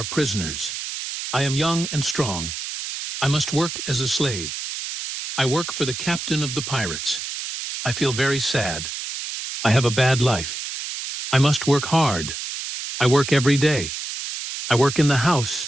prisoners. I am young and strong. I must work as a slave. I work for the captain of the pirates. I feel very sad. I have a bad life. I must work hard. I work every day. I work in the house.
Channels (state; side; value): noise; right; hiss, 6 dB below the sound